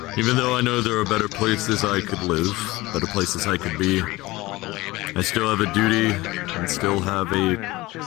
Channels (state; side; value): quieter; right; 20.1 dB